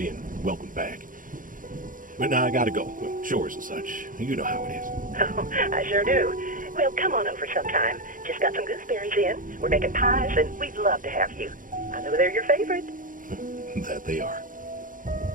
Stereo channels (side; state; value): left; late; 0.39 ms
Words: welcomed back. But now I gotta go. Well, chores and such. You know how it is. Oh, I sure do. Well, come on over sometime. Just got some gooseberries in. We're making pies, and we'd love to have you. I know they're your favorite. That they are.